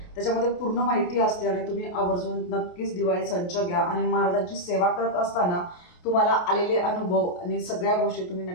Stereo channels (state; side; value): late; right; 28 ms